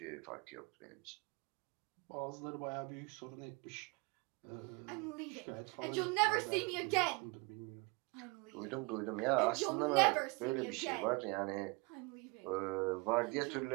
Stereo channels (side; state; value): left; quieter; 27.5 dB